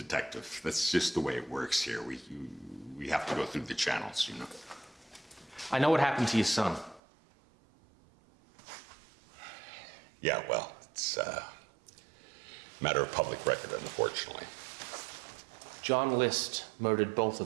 that's just the way it works here. We have to go through the channels, you know. I know what happened to your son. Yeah, well, it's a matter of public record, unfortunately. John List murdered both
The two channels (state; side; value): drops out; left; at 7.0 s